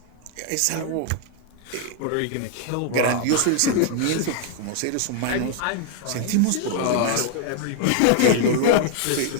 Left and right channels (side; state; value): both; different; correlation 0.00